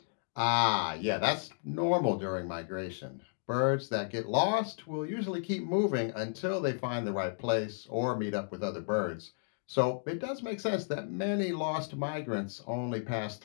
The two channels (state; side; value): silent; right; digital silence